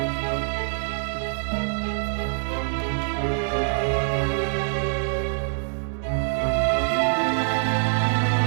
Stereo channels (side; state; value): left; silent; digital silence